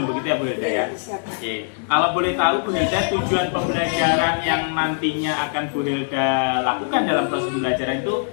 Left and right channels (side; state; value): right; silent; digital silence